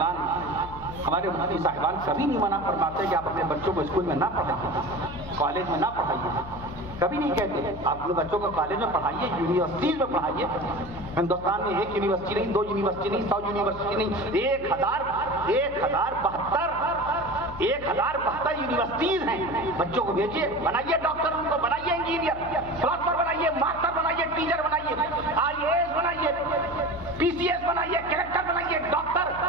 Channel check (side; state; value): left; noise; hum, 15 dB below the sound